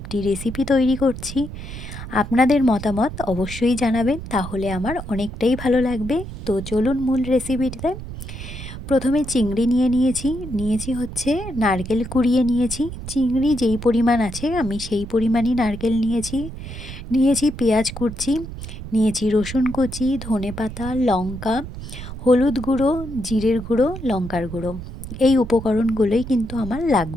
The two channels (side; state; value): right; noise; rumble, 10 dB below the sound